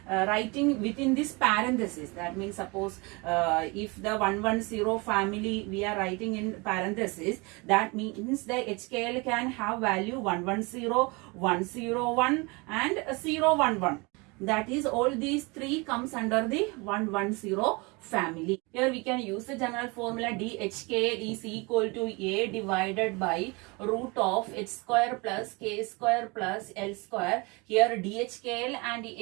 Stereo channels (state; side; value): quieter; left; 27.3 dB